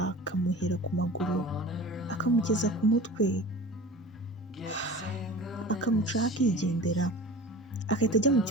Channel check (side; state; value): both; normal; correlation 0.37